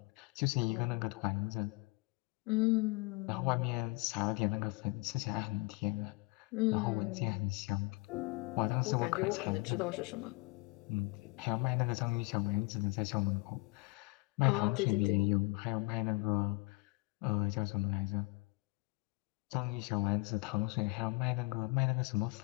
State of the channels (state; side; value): quieter; right; 26.4 dB